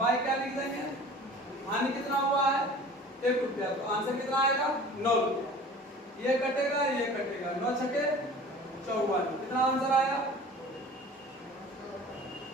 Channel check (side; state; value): both; normal; correlation 0.43